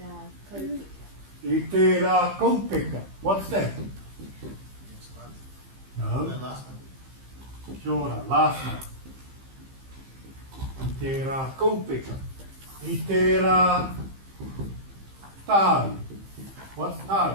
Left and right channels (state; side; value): late; left; 15 ms